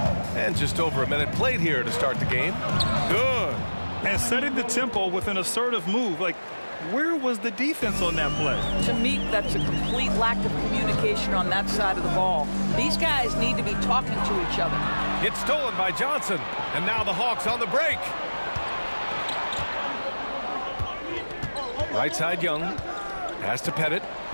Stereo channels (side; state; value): both; inverted; correlation -1.00